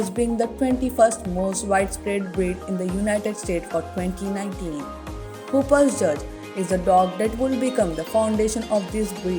being the 21st most widespread breed in the United States for 2019. Hooper's Judge is the dog that will become the foundation of this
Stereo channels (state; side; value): identical; both; correlation 1.00